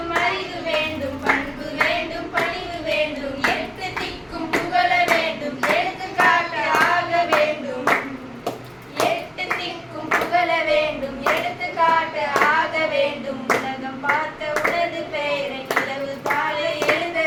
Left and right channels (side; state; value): both; identical; correlation 1.00